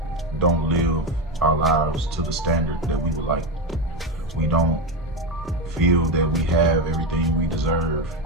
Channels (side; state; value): both; normal; correlation 0.13